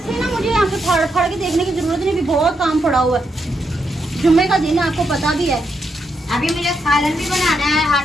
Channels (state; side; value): normal; both; correlation 0.81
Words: ना मुझे यहाँ पे फाड़ फाड़ के देखने की जरूरत नहीं, अभी बहुत काम पड़ा हुआ है। जुम्मे का दिन है, आपको पता भी है। अभी मुझे सालन भी बनाना है,